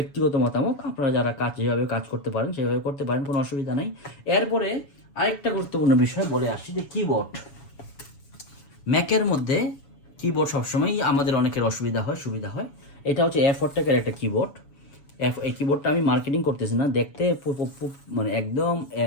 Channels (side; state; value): right; late; 7.1 ms